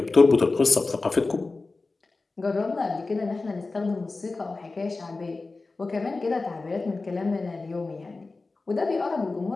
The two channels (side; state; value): right; quieter; 3.6 dB